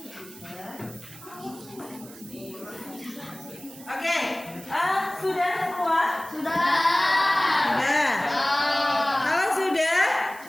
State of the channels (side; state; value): right; noise; hiss, 19 dB below the sound